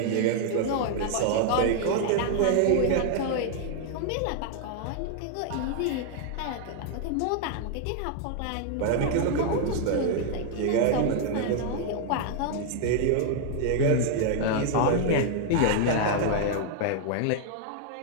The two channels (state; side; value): different; both; correlation 0.00